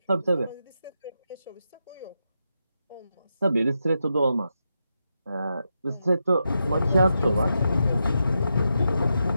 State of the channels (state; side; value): inverted; both; correlation -0.86